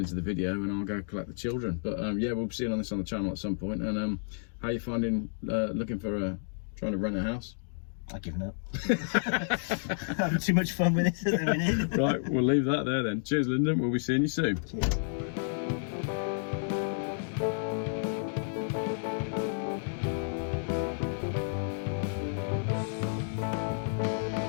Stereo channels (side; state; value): right; silent; digital silence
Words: the video, and I'll go collect the children. But yeah, we'll be seeing on this on the channel at some point. And how you finding looking for trying to rent a house? I've given up. I'm having too much fun with this at the minute. Right, we'll leave that there then. Cheers, Lyndon. We'll be seeing you soon. Cheers.